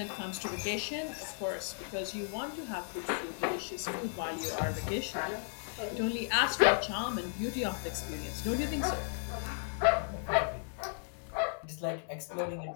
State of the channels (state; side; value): silent; right; digital silence